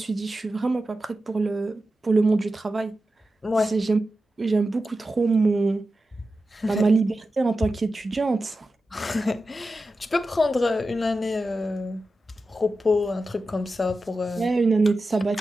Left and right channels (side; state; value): both; normal; correlation 0.92